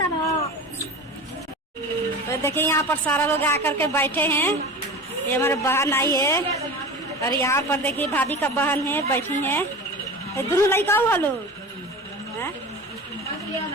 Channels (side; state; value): both; normal; correlation 0.32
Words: तो देखिए यहाँ पर सारा लोग आकर के बैठे हैं। ये हमारे बहन आई है और यहाँ पर देखिए भाभी का बहन है बैठी है। दोनों लड़का हुआ लोग